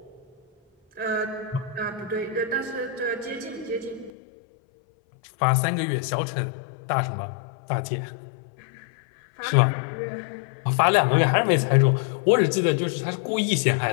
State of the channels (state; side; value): drops out; right; at 4.1 s